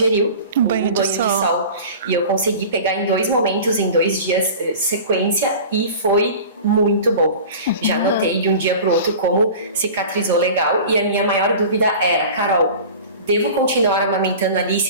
um banho de sol. E eu consegui pegar em 2 momentos, em 2 dias, sequência, e foi muito bom. Já notei de um dia para o outro como cicatrizou legal. E a minha maior dúvida era, Carol, devo continuar amamentando a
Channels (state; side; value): inverted; both; correlation -0.38